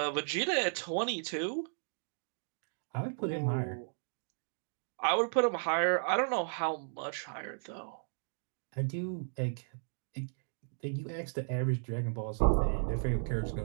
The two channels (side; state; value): left; silent; digital silence